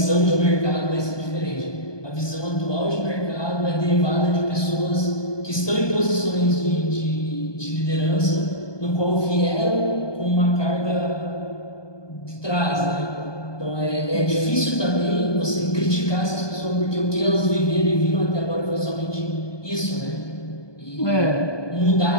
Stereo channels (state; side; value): late; right; 1.2 ms